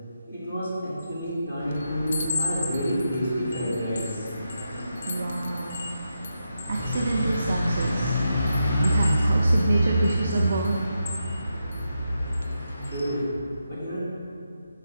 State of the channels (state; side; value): inverted; both; correlation -0.85